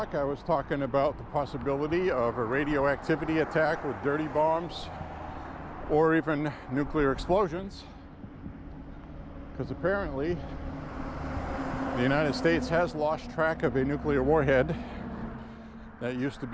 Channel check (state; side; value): identical; both; correlation 1.00